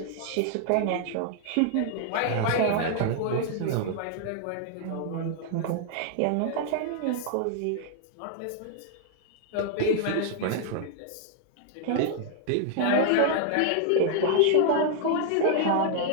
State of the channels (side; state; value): both; different; correlation 0.00